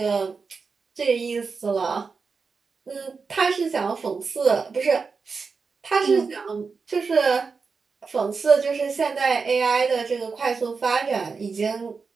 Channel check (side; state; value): left; quieter; 4.9 dB